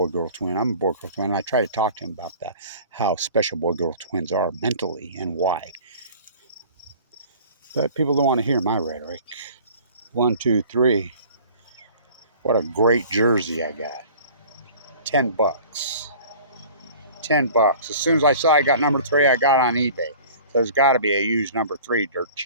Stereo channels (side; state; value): both; inverted; correlation -0.46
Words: twin. I'm a boy-girl twin. And I try to talk to him about that, how special boy-girl twins are mentally and why. But people don't want to hear my rhetoric. 1, 2, 3. What a great jersey I got. $10. $10. As soon as I saw I got number 3, I got on eBay. So there's got to be a used number 3 dirt